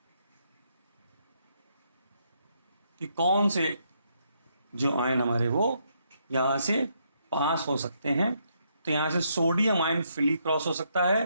कि कौन से जो आयन हमारे वो यहाँ से पास हो सकते हैं। तो यहाँ से सोडियम आयन फ्रीली क्रॉस हो सकता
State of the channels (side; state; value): both; inverted; correlation -0.76